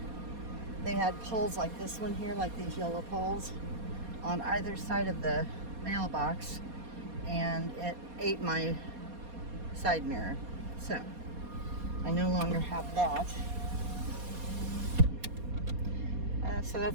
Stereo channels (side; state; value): left; late; 4.2 ms